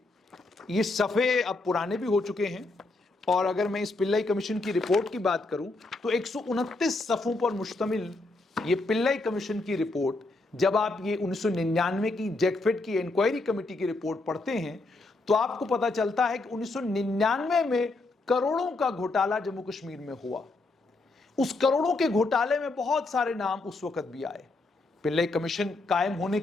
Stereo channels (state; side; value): quieter; right; 3.2 dB